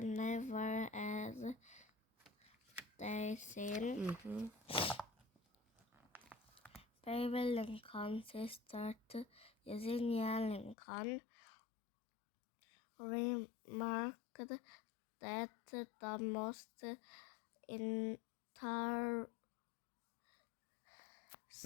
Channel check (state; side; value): drops out; right; at 10.8 s